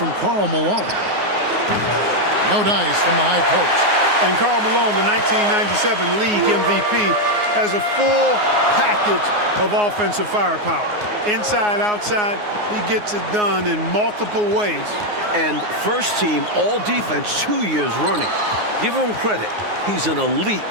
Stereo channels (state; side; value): late; left; 9.6 ms